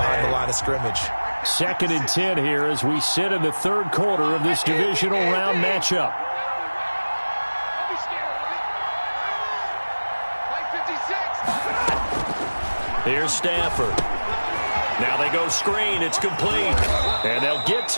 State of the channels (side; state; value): both; inverted; correlation -1.00